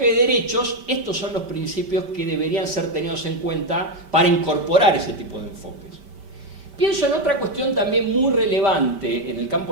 de derechos, estos son los principios que deberían ser tenidos en cuenta para incorporar ese tipo de enfoques. Pienso en otra cuestión también muy relevante en el campo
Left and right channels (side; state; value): left; late; 5.1 ms